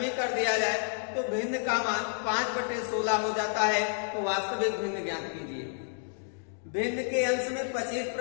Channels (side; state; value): right; silent; digital silence